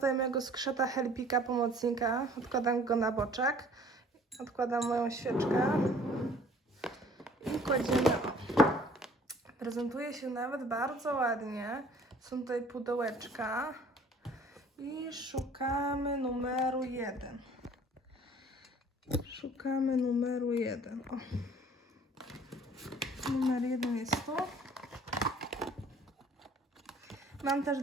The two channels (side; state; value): both; normal; correlation 0.53